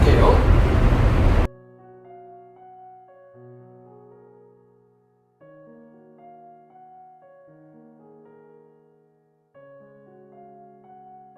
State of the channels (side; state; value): both; identical; correlation 1.00